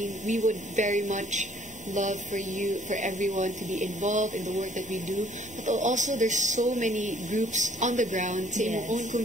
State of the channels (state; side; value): normal; both; correlation 0.60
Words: we would very much love for everyone to be involved in the work that we do, but also there's so many groups on the ground in your own